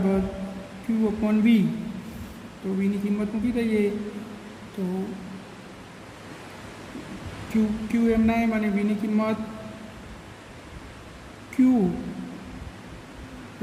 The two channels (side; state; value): both; identical; correlation 1.00